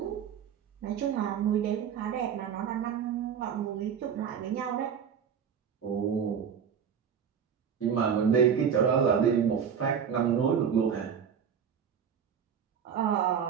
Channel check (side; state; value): left; quieter; 7.6 dB